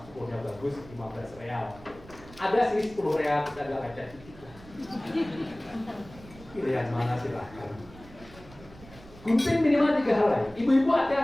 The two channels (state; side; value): noise; right; rumble, 20 dB below the sound